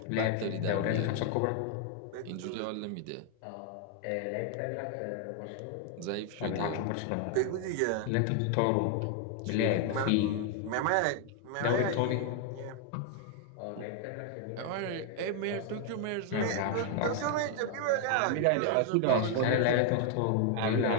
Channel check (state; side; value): different; both; correlation 0.00